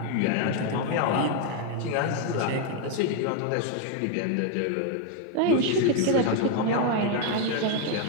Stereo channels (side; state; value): both; different; correlation 0.01